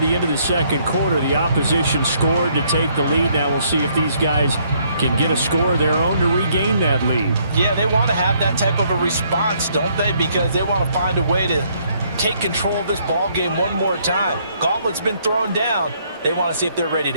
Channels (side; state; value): both; inverted; correlation -0.68